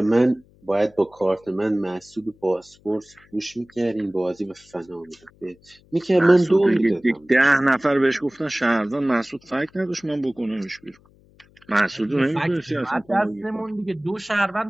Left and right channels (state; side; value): noise; left; hum, 30 dB below the sound